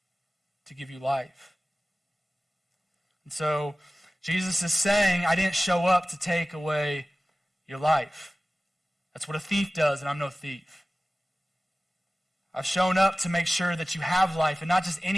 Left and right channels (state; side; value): normal; both; correlation 0.97